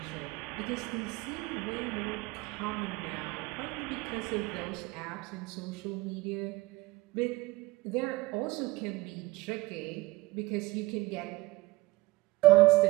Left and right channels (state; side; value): quieter; left; 20.3 dB